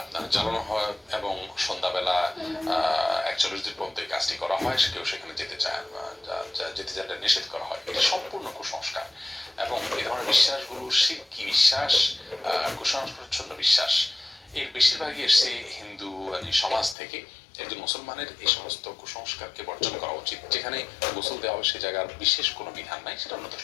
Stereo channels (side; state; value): right; drops out; at 16.9 s